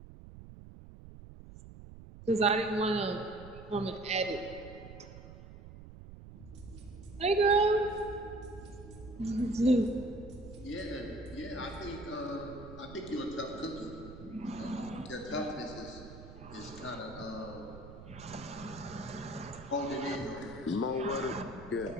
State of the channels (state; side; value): noise; right; rumble, 15 dB below the sound